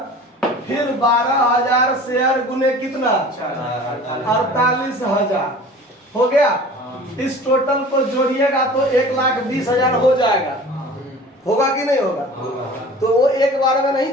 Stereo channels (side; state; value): both; normal; correlation 0.42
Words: फिर 12,000 शेयर गुने कितना, 48,000 हो गया। इस टोटल को जोड़िएगा तो 1,20,000 हो जाएगा, होगा कि नहीं होगा। तो वो एक बार में नहीं